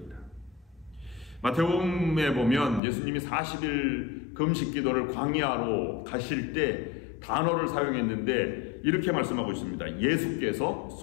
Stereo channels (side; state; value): right; drops out; at 2.8 s